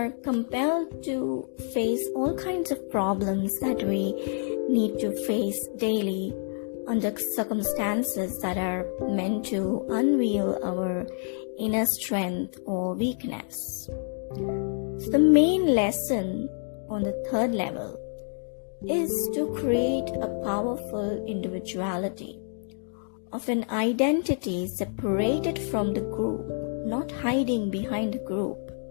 compelled to face all kinds of problems that we need to face daily under circumstances that are meant to unveil our inner strength or weakness. So the main lesson on the third level is to create a powerful individuality of an identity separated from the group, not hiding behind the group,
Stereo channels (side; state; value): right; silent; 60 dB below the other